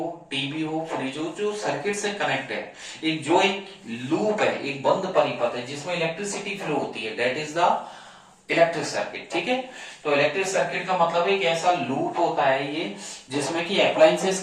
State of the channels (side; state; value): both; identical; correlation 1.00